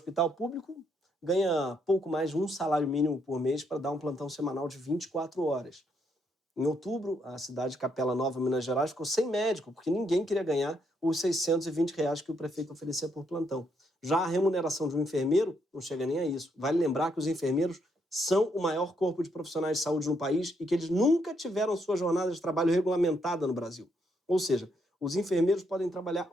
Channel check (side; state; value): both; normal; correlation 0.75